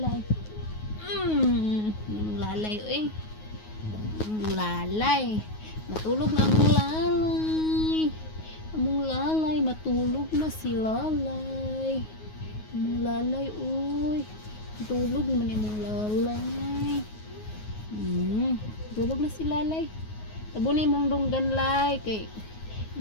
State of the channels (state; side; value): late; right; 9.4 ms